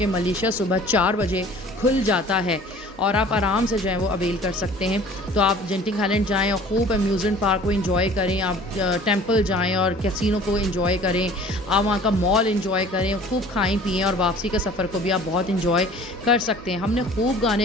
मलेशिया सुबह 4 बजे खुल जाता है और आप आराम से जो है वो अवेल कर सकते हैं। तो आप जेंटिंग आइलैंड जाएँ और खूब अम्यूज़मेंट पार्क को एंजॉय करें, आप टेंपल जाएँ और कैसीनो को एंजॉय करें, आप वहाँ का मॉल एंजॉय करें, खूब खाएं पिएं और वापसी के सफ़र को भी आप बहुत एंजॉय कर सकते हैं। हमने खूब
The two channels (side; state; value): both; normal; correlation 0.48